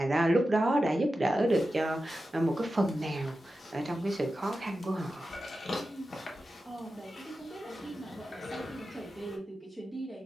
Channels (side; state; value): both; normal; correlation 0.92